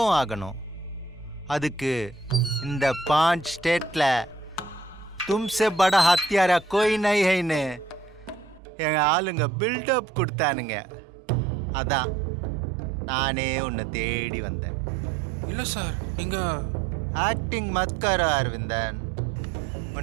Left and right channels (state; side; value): drops out; left; at 8.6 s